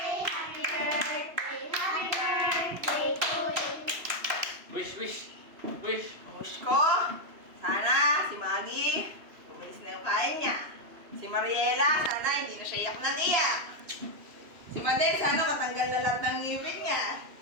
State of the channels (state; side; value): late; left; 3.0 ms